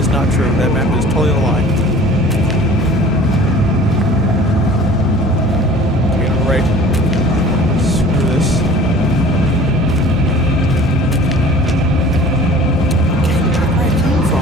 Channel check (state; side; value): normal; both; correlation 0.46